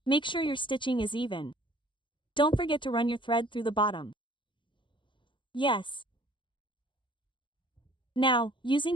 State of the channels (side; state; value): right; late; 0.23 ms